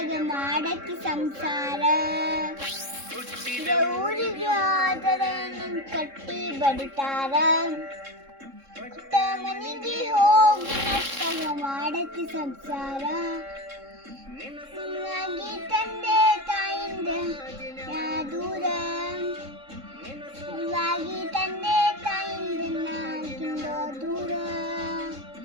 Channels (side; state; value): left; late; 3.7 ms